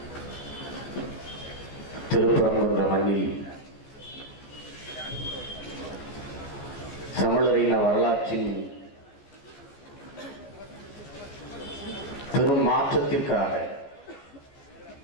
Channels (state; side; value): late; right; 14 ms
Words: திருப்பரங்குன்ற மண்ணில் தமிழரின் வரலாற்றின் பெரும் மாற்றத்திற்காக